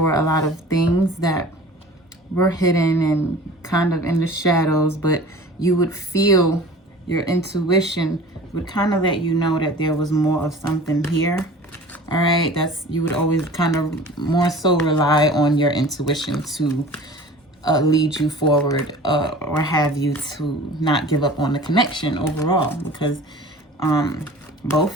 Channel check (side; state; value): both; normal; correlation 0.42